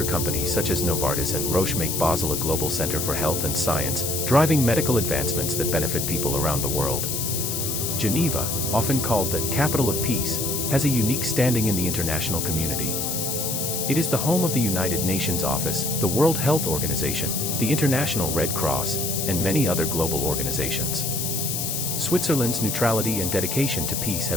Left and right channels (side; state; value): left; noise; hiss, 1 dB below the sound